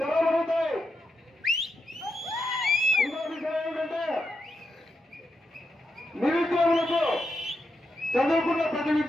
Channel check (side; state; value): both; normal; correlation 0.85